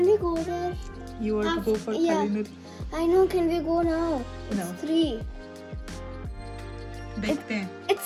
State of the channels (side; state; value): both; identical; correlation 1.00